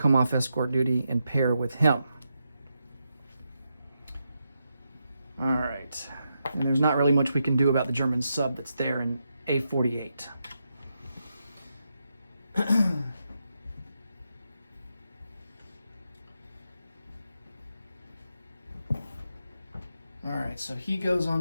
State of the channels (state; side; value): inverted; both; correlation -0.84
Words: off escort duty and pair with him. All right. And there's not really much we can do about the German sub that's there in A48. All right, so he goes